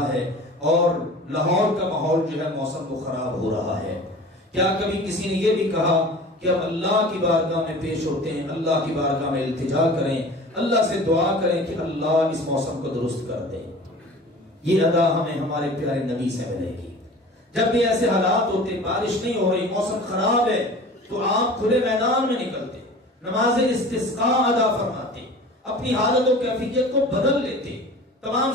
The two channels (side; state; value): both; normal; correlation 0.40